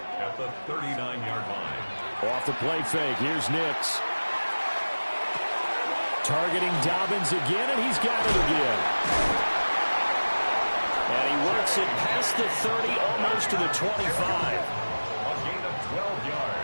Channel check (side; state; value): both; inverted; correlation -1.00